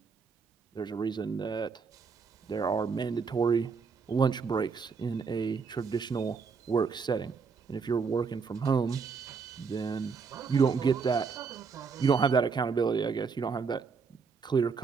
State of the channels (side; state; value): left; quieter; 5.3 dB